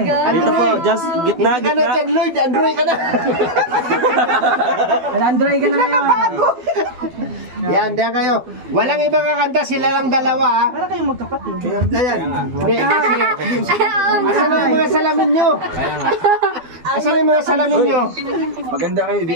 Dito po, just gitna, Hindi ka na gitna. John Lloyd, Andrew ka na. Android ka na ngayon. Yan, diyan kayo. Walang ibang kakanta, sila lang dalawa ha. Para kayong magkapatid. Ayan. Hindi, kasi, asan na yung mga salamin nyo? Asan na yung mga salamin nyo? Maganda kayo,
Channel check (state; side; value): late; left; 12 ms